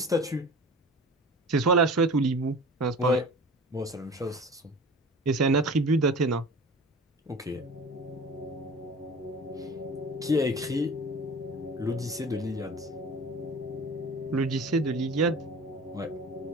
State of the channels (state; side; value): normal; both; correlation 0.39